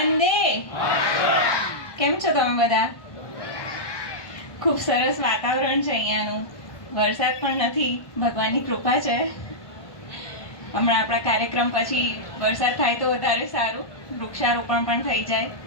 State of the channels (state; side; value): late; right; 1.2 ms